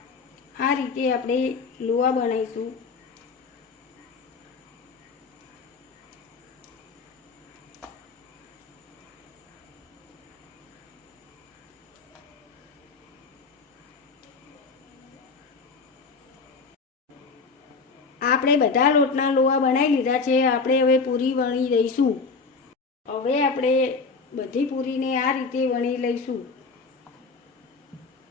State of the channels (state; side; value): quieter; right; 4.5 dB